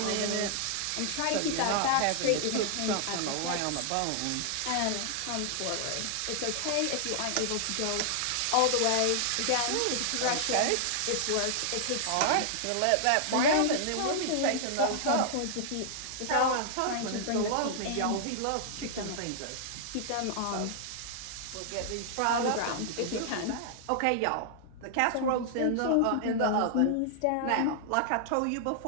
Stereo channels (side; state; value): both; different; correlation -0.01